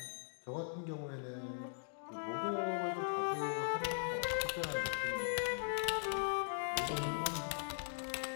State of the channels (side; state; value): right; silent; digital silence